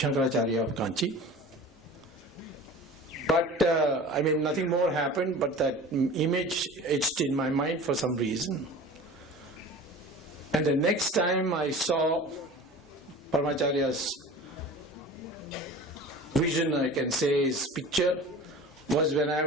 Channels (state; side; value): normal; both; correlation 0.38